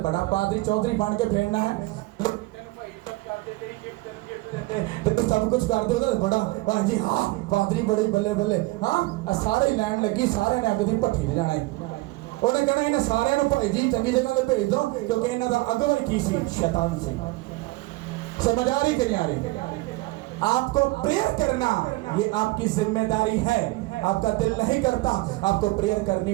बड़ा पादरी चौधरी बन के फेरना है, तो सब कुछ कर दे, बड़ा वाह जी, हाँ पादरी बड़े बल्ले बल्ले, हाँ सारे लैन लगी, सारे ने अग दी भट्ठी जाना है। उन्हें कहना इन्हें सारे भाई जी चंगी जगह भेज दो, क्योंकि इन्हों का अगो ही की सी, शैतान से। समझ आ रही कि नहीं आ रही? आपको प्रेयर करना ये आपकी जिम्मेदारी है। आपका दिल नहीं करता, आपको प्रेयर करनी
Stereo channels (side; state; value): left; quieter; 21.2 dB